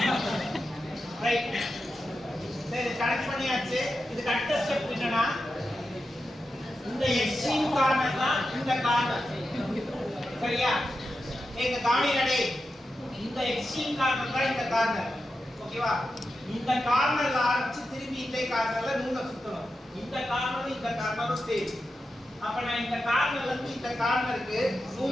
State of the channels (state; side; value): normal; both; correlation 0.90